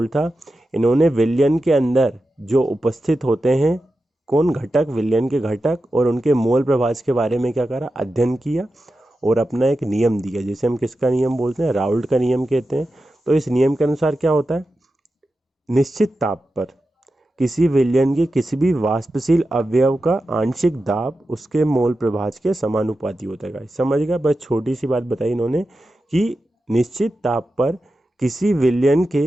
था, इन्होंने विलयन के अंदर जो उपस्थित होते हैं कौन घटक, विलयन के घटक और उनके मोल प्रभाज के बारे में क्या करा? अध्ययन किया और अपना एक नियम दिया, जिसे हम किसका नियम बोलते हैं? राउल्ट का नियम कहते हैं। तो इस नियम के अनुसार क्या होता है? निश्चित ताप पर किसी विलयन के किसी भी वाष्पशील अवयव का आंशिक दाब उसके मोल प्रभाज के समानुपाती होता है गाइस। समझ गया? बस छोटी सी बात बताई इन्होंने कि निश्चित ताप पर किसी विलयन के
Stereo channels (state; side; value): normal; both; correlation 0.91